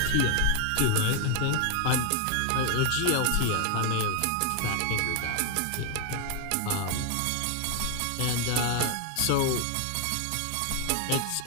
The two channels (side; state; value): both; different; correlation 0.00